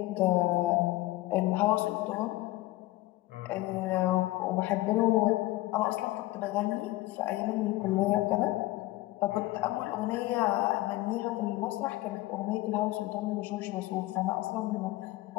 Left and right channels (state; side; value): quieter; right; 18.2 dB